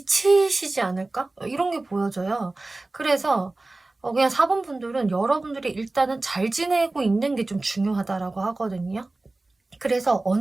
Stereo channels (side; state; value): left; quieter; 3.1 dB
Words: 않을까? 이런 게 보여져요. 그래서 그냥 4번 분들은 여러분들이 일단은 잘 지내고 있는 게 좀 중요하다라고 하거든요. 그래서